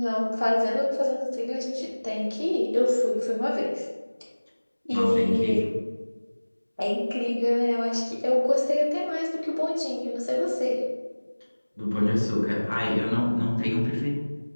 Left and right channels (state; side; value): inverted; both; correlation -1.00